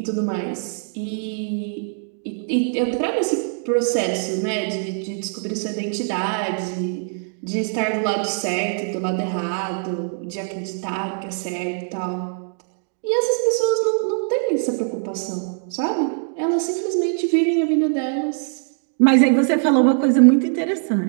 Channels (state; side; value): silent; left; 64 dB below the other